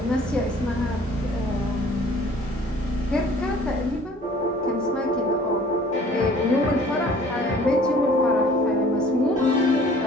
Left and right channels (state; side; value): normal; both; correlation 0.51